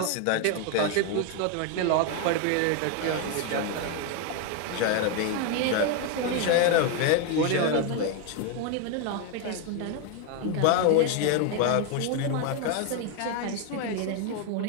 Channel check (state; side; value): different; both; correlation 0.01